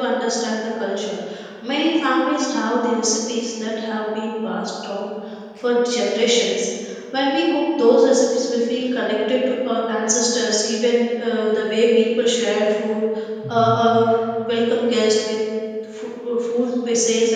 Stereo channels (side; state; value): both; identical; correlation 1.00